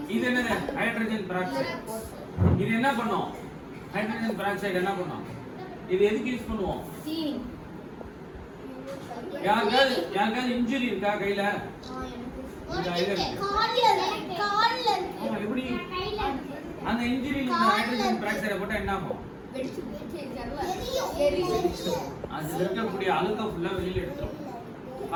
இது என்னது? Hydrogen peroxide. இது என்ன பண்ணும்? ஹைட்ரஜன் பெராக்சைடு என்ன பண்ணும்? இது எதுக்கு யூஸ் பண்ணுவோம்? சீனி யாருக்காவது இன்ஜுரி இருக்கா கையில? கால்ல ஆமா, எப்படி அந்த இன்ஜுரியில இந்த ஹைட்ரஜன் பெராக்சைடை போட்டா என்ன ஆகும்? அது இருக்கக்கூடிய அழுக்க ஃபுல்லா வெளியில எடுத்துரும்.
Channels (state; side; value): identical; both; correlation 1.00